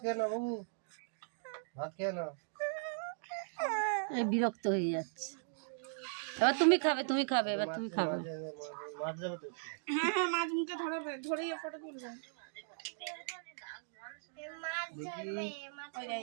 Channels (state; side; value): silent; left; digital silence